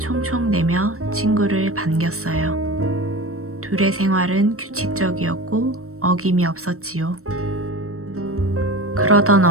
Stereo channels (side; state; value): left; late; 0.63 ms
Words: 친구를 반겼어요. 둘의 생활은 규칙적이었고 어김이 없었지요. 그러던